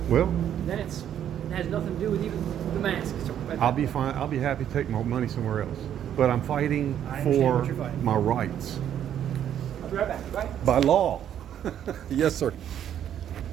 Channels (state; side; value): quieter; left; 10.1 dB